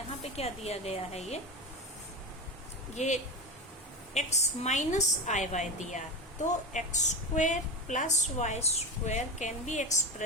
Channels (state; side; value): normal; both; correlation 0.22